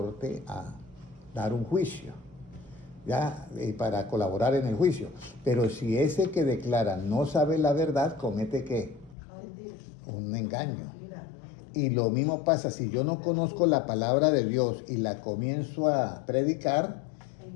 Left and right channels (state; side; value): drops out; right; at 9.2 s